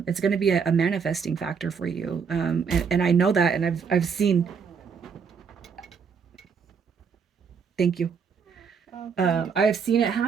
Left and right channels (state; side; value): quieter; left; 6.2 dB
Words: it's going to be a manifesting factor for you. And I know that, and I've seen. Thank you. I've seen it